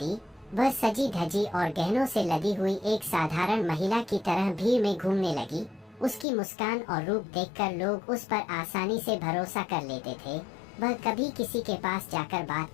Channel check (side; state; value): right; drops out; at 6.2 s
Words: दी। वह सजी धजी और गहनों से लदी हुई एक साधारण महिला की तरह भीड़ में घूमने लगी। उसकी मुस्कान और रूप देखकर लोग उस पर आसानी से भरोसा कर लेते थे। वह कभी किसी के पास जाकर बात